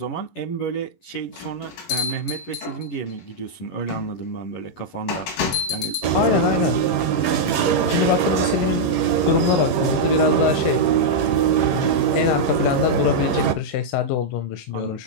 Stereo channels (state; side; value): late; right; 11 ms